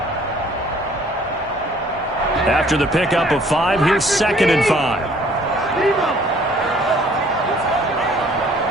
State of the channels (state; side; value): normal; both; correlation 0.58